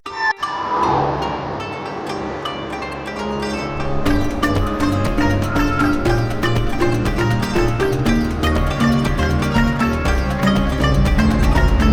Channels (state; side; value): identical; both; correlation 1.00